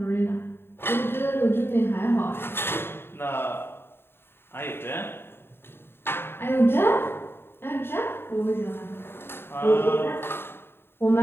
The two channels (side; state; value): right; late; 0.11 ms